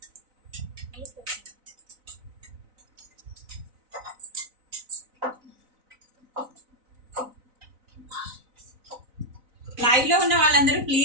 లైవ్ లో ఉన్న వాళ్ళందరూ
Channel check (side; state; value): left; late; 4.0 ms